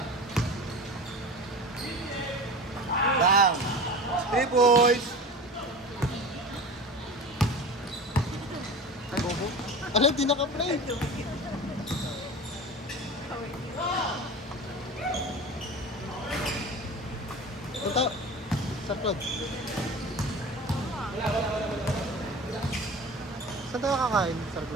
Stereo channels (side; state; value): both; normal; correlation 0.34